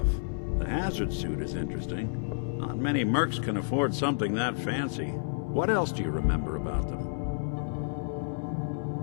The hazard suit is interesting. Not many mercs can afford something that fancy. What else do you remember about them?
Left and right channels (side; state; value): right; silent; 58 dB below the other